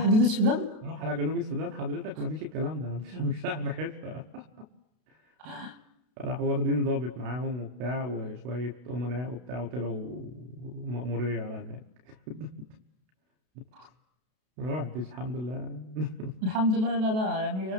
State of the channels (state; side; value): late; left; 32 ms